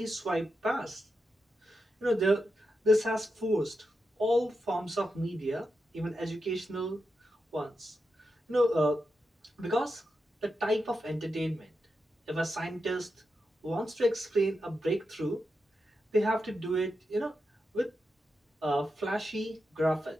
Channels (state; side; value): normal; both; correlation 0.87